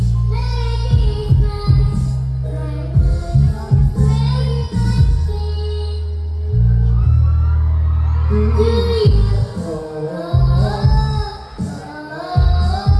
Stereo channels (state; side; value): identical; both; correlation 1.00